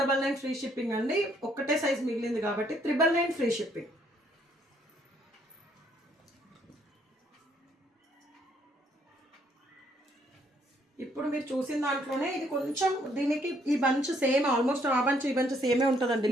ఫ్రీ షిప్పింగ్ అండి. ఒక్కటే సైజ్ మిగిలింది కాబట్టి 999 ఫ్రీ షిప్పింగ్. ఇప్పుడు మీరు చూసిన దాంట్లోనే ఇది కొంచెం దీనికి ఈ బంచ్ సేమ్, ఆల్మోస్ట్ ఆ బంచ్ ఈ బంచ్ సేమే ఉంటుందండి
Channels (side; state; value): both; normal; correlation 0.68